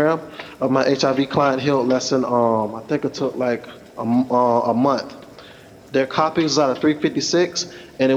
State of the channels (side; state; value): both; identical; correlation 1.00